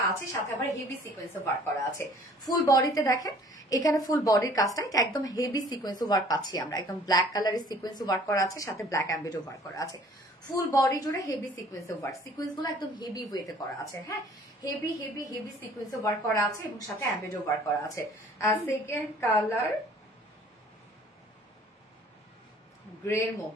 আছে, সাথে আবার হেভি সিকোয়েন্সে ওয়ার্ক করা আছে। ফুল বডিতে দেখেন এখানে ফুল বডির কাজটা এটা একদম হেভি সিকোয়েন্সে ওয়ার্ক পাচ্ছি আমরা, একদম ব্ল্যাক কালারের সিকোয়েন্সে ওয়ার্ক করা আছে, সাথে ব্ল্যাক অ্যাম্বিডো ওয়ার্ক করা আছে। ফুল বডি জুড়ে হেভি সিকোয়েন্সে ওয়ার্ক, সিকোয়েন্স গুলো একদম হেভি ওয়েতে করা আছে, হ্যাঁ হেভি হেভি হেভি সিকোয়েন্সে ওয়ার্ক করা আছে এবং সাথে অ্যাম্বিডো ওয়ার্ক করা আছে। সেকেন্ড কালার গ্রে এর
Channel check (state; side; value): normal; both; correlation 0.53